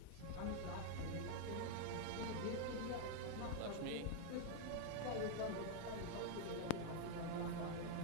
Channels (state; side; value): different; both; correlation 0.00